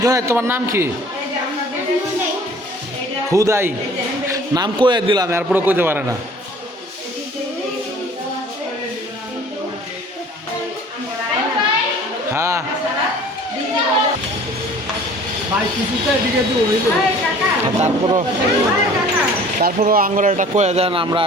জুনায়েদ তোমার নাম কি? হুদাই নাম কয়ে দিলাম, এরপরে কইতে পারে না। হ্যাঁ তারপরও আঙ্গুর একটা কয়ে দেন, আমরা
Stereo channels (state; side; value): normal; both; correlation 0.49